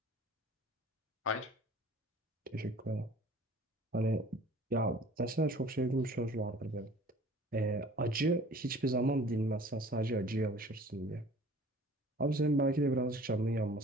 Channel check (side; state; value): both; normal; correlation 0.48